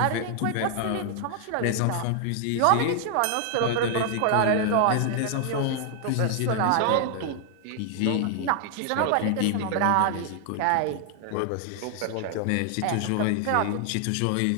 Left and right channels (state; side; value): different; both; correlation 0.00